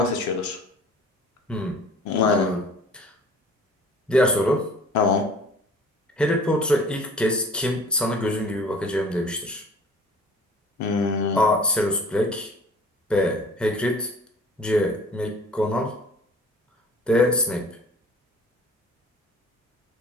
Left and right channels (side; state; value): both; normal; correlation 0.48